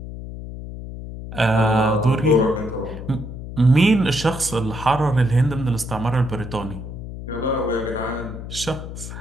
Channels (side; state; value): left; noise; hum, 10 dB below the sound